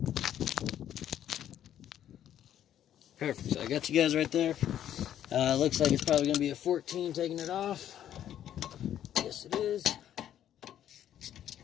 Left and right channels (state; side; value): quieter; right; 10.8 dB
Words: perfect. So I got you guys right there. Looks like it's probably going to be a 14 taking it off. Yes, it is.